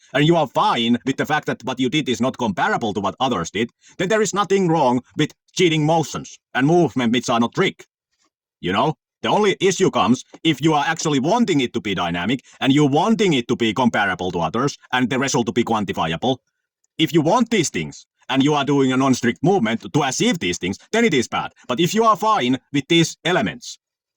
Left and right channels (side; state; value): both; identical; correlation 1.00